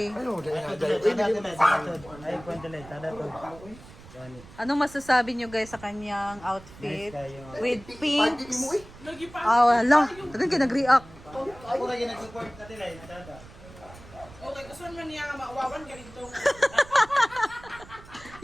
Ano, dahil nga Ay, kwento lang. Tada to. Anong masasabi nyo guys sa kanyang outfit? Nice kayo. With Pagkiki pink. mo eh. Ah, wala. Tagang kinag-react. Ako lagi nag-support ka tila. Tada. Okay, gusto man niya nga maawawan ka dito.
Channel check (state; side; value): noise; right; rumble, 19 dB below the sound